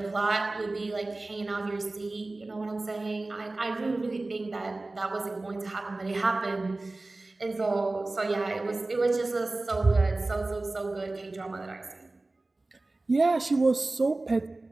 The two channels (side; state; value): left; quieter; 3.1 dB